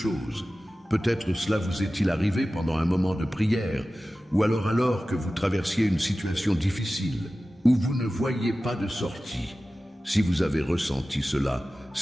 Peut-être cela vous est-il arrivé pendant un moment de prière, ou alors que vous traversiez une situation difficile, où vous ne voyiez pas de sortie. Si vous avez ressenti cela,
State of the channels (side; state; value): both; normal; correlation 0.95